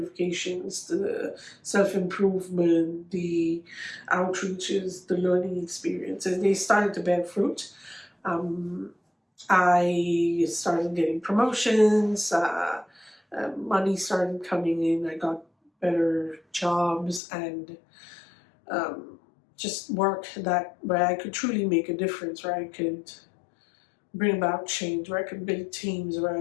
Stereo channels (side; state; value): right; drops out; at 17.2 s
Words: the self-improvement, the outreaches, the learning experiences, they started to bear fruit. I started getting promotions, money started coming in, I got better jobs, and just work where I could truly make a difference, where I could bring about change, where I could build teams, where